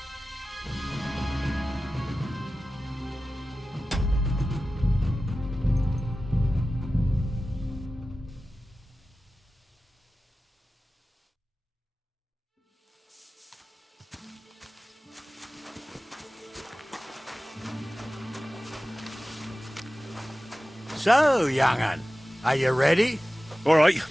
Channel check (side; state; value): both; normal; correlation 0.95